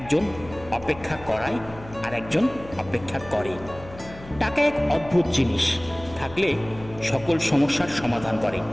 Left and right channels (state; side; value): noise; left; hum, 17 dB below the sound